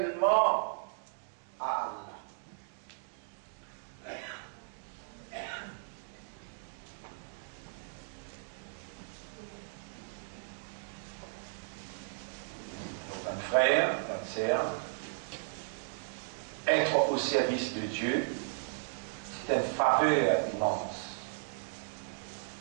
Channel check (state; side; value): silent; left; digital silence